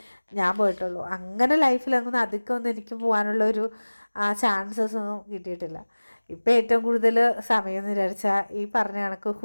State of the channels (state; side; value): inverted; both; correlation -1.00